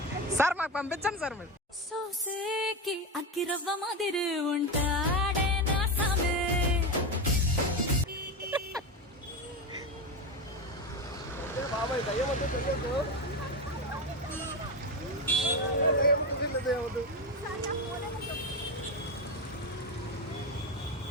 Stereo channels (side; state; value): both; normal; correlation 0.16